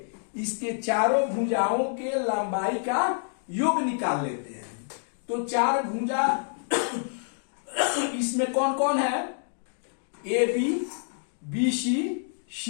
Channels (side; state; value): right; silent; digital silence